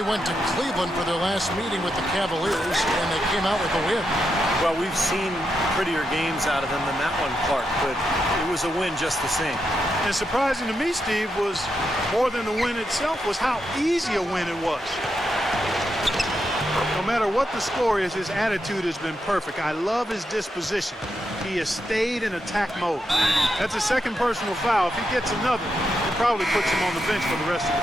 went to Cleveland for their last meeting with the Cavaliers, and they came out with a win. Well, we've seen prettier games out of them than that one, Clark, but it was a win just the same. And surprising to me, Steve, was more than the win itself, was how easy a win it was. No matter what the score is, his attitude has been perfect. I love his disposition. He has stayed in attack mode. That's a second personal foul. If he gets another, it probably puts him on the bench for the rest of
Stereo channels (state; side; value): normal; both; correlation 0.84